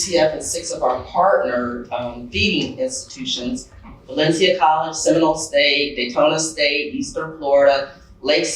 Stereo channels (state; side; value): identical; both; correlation 1.00